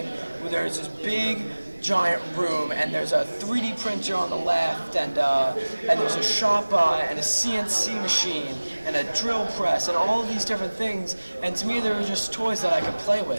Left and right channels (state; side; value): inverted; both; correlation -1.00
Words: there's this big, giant room, and there's a 3D printer on the left, and there's a Shopbot and a CNC machine and a drill press and all of these different things. And to me, they were just toys that I could play